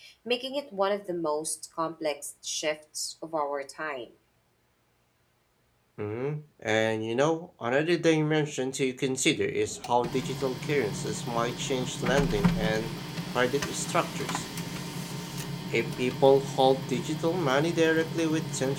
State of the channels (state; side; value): identical; both; correlation 1.00